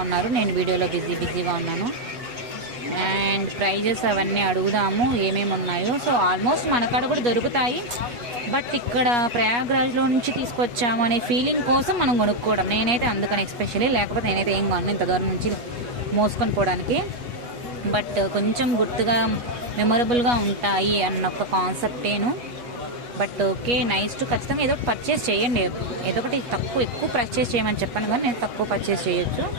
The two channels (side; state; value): left; late; 8.3 ms